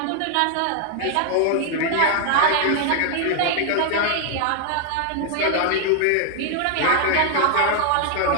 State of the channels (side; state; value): both; different; correlation 0.00